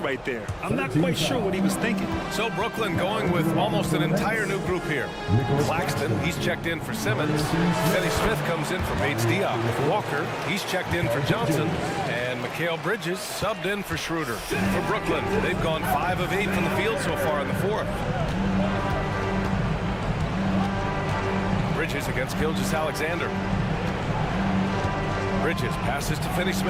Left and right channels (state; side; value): identical; both; correlation 1.00